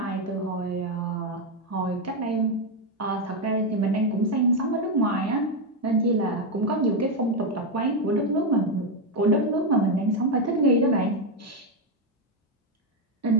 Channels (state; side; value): normal; both; correlation 0.05